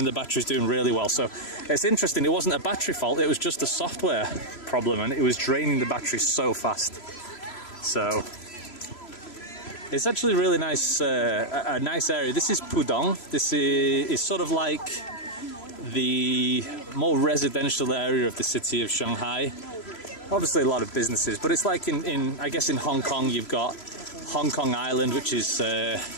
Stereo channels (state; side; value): late; right; 3.0 ms